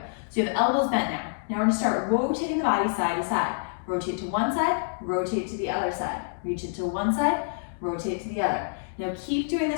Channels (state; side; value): silent; right; digital silence